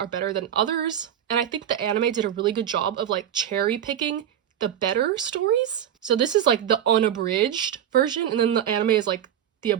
better than others, and I think the anime did a really good job of like cherry picking the better stories. So this is like the unabridged version, and then the anime is like the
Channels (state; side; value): quieter; left; 10.1 dB